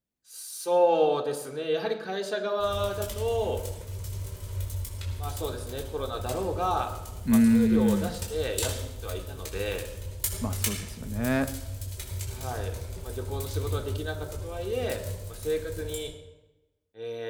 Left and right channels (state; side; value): identical; both; correlation 1.00